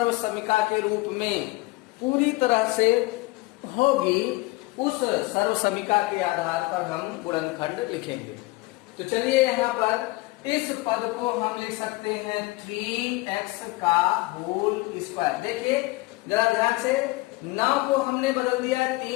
के रूप में पूरी तरह से होगी उस सर्वसमिका के आधार पर हम गुणनखंड लिखेंगे। तो चलिए यहाँ पर इस पद को हम लिख सकते हैं 3x का होल स्क्वायर। देखिए जरा ध्यान से, 9 को हमने बदल दिया है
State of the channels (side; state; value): right; quieter; 21.6 dB